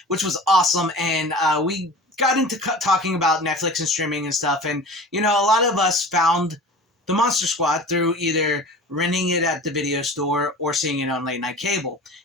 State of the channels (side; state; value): both; normal; correlation 0.38